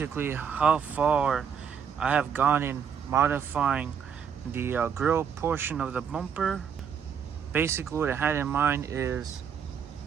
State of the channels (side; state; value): left; quieter; 7.4 dB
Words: how far I have gone in modifying the grill portion of the bumper. Basically what I had in mind is